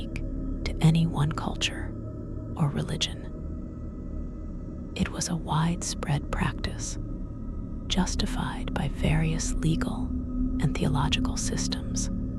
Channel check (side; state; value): both; identical; correlation 1.00